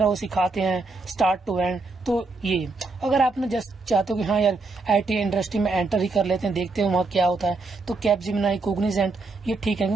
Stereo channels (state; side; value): quieter; left; 3.6 dB